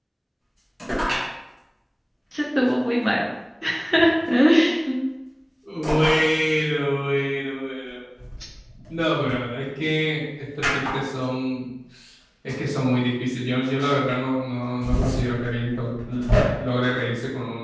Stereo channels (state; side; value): identical; both; correlation 1.00